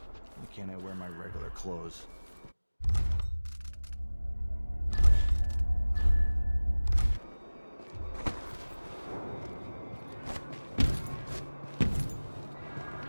Why can't I wear my regular clothes?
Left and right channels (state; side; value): inverted; both; correlation -1.00